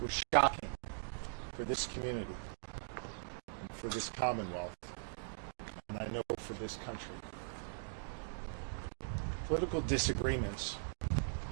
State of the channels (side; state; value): left; silent; digital silence